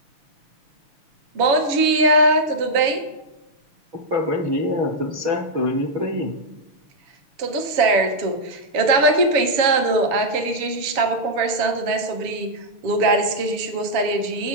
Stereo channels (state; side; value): late; left; 7.1 ms